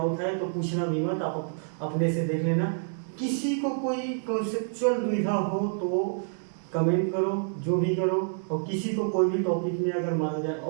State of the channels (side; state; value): left; silent; digital silence